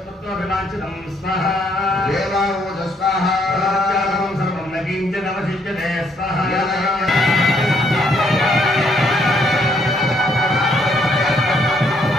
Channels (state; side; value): normal; both; correlation 0.70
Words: స్వాహా దేవావోజ స్వాహా ప్రత్యాగమం సర్వం నకించనవశిష్యతే స్వాహా